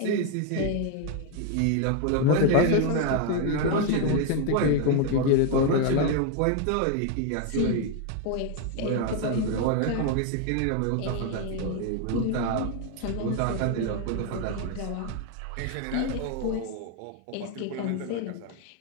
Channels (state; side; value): different; both; correlation 0.01